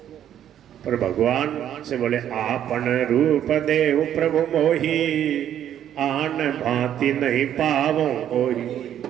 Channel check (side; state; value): left; quieter; 10.5 dB